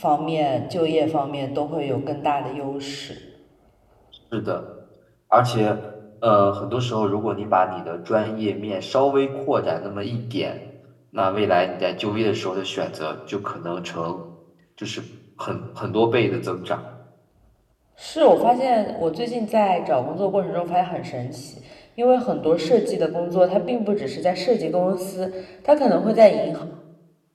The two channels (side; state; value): both; identical; correlation 1.00